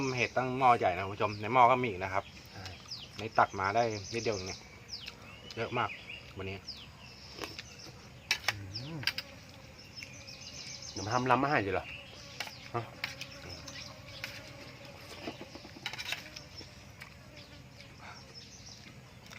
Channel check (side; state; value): both; identical; correlation 1.00